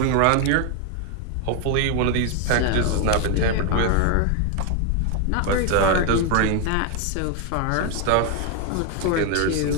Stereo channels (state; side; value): different; both; correlation 0.01